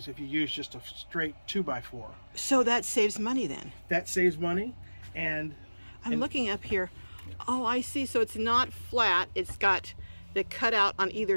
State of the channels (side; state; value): both; inverted; correlation -1.00